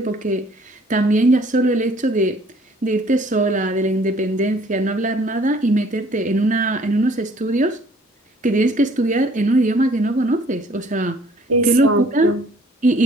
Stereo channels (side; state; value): both; normal; correlation 0.57